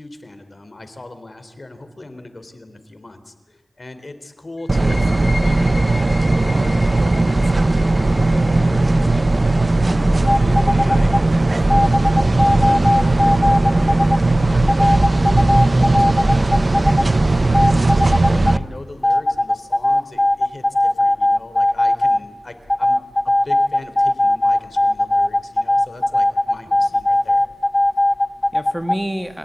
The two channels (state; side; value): normal; both; correlation 0.98